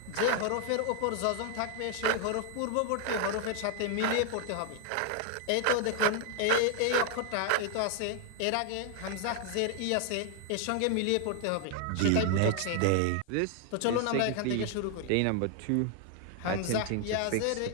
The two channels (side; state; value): both; different; correlation 0.00